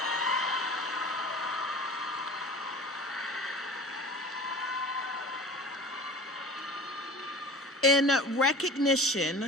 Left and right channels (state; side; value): normal; both; correlation 0.40